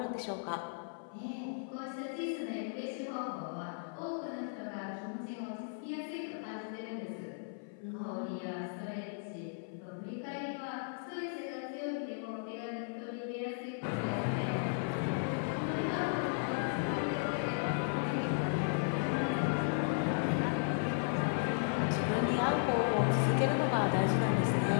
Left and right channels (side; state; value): right; silent; 54 dB below the other